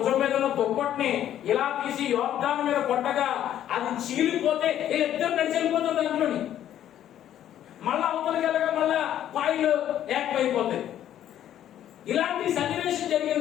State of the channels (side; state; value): right; quieter; 11.2 dB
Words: మీద ఉన్న దుప్పటిని ఇలా తీసి యోర్దాను మీద కొట్టగా అది చీలిపోతే ఇద్దరు నడిచి వెళ్ళిపోతారు దాంట్లోని. మళ్ళా అవతలికి వెళ్ళగా మళ్ళా పాయలు ఏకమైపోతాయి. ఇలాంటి సన్నివేశం జరిగిన